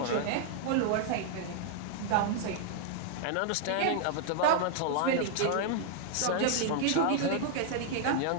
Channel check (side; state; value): both; different; correlation -0.01